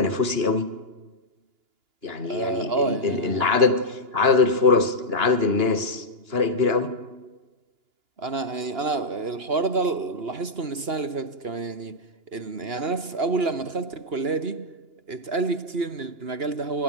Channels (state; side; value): late; left; 2.9 ms